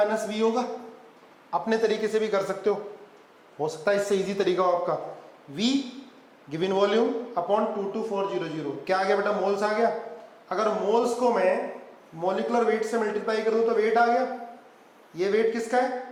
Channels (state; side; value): identical; both; correlation 1.00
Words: V होगा। अपने तरीके से भी कर सकते हो सकता है इससे इजी तरीका हो आपका। V गिवन वॉल्यूम अपॉन 22400 क्या आ गया बेटा मोल्स आ गया। अगर मोल्स को मैं मॉलिक्यूलर वेट से मल्टीप्लाई कर दूं तो वेट आ गया, ये वेट किसका